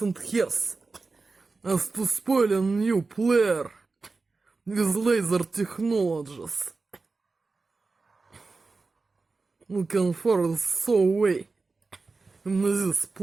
and hairs. As to spoil a new player with laser technologies. Looking for so way in this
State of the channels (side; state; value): left; quieter; 3.9 dB